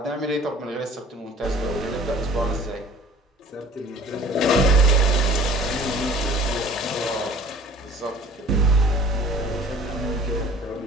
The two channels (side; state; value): both; normal; correlation 0.48